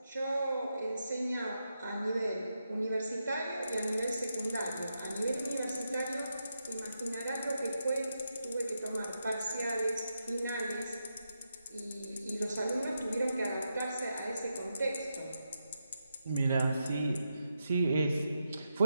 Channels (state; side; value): inverted; both; correlation -0.85